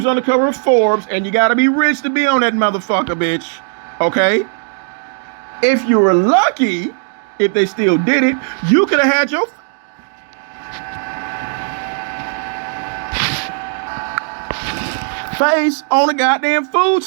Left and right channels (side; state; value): left; silent; digital silence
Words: on the cover of Forbes and you gotta be rich to be on that motherfucker, bitch. Okay? If you were lucky, if they still did it, you could have had your face on a goddamn food